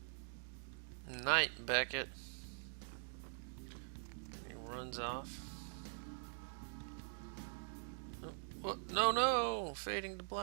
Night, Beckett. He runs off. Oh, what? No, no! Fading to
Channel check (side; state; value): left; silent; digital silence